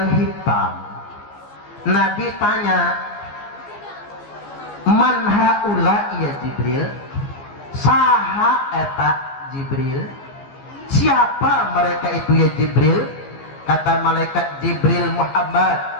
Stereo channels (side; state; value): right; late; 15 ms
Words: hitam. Nabi tanya, "Man haula ya Jibril?" Saha eta Jibril? Siapa mereka itu ya Jibril? Kata malaikat Jibril, Muhammad.